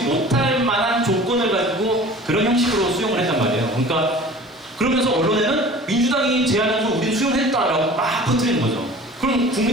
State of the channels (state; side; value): normal; both; correlation 0.43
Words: 못할 만한 조건을 가지고 그런 형식으로 수용을 했단 말이에요. 그러니까 그러면서 언론에는 민주당이 제안해서 우린 수용했다라고 막 퍼뜨리는 거죠. 그럼